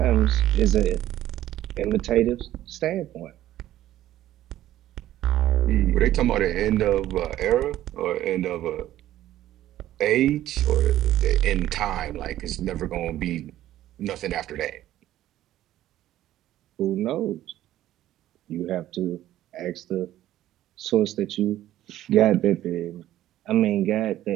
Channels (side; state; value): left; quieter; 13.5 dB